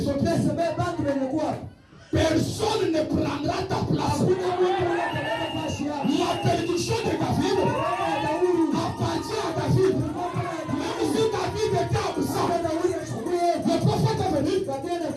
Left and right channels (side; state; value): both; identical; correlation 1.00